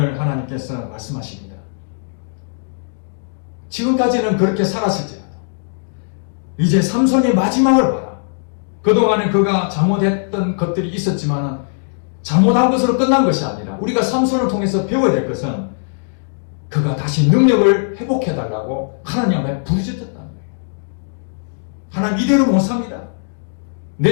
하나님께서 말씀하십니다. 지금까지는 그렇게 살았을지라도 이제 삼손의 마지막을 봐라. 그동안에 그가 잘못했던 것들이 있었지만 잘못한 것으로 끝난 것이 아니라 우리가 삼손을 통해서 배워야 될 것은 그가 다시 능력을 회복해달라고 하나님 앞에 부르짖었다는 거예요. 하나님 이대로 못 삽니다. 내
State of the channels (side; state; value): right; silent; digital silence